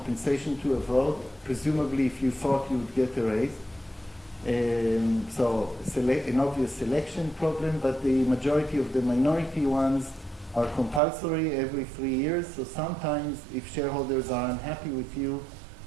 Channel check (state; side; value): drops out; left; at 11.0 s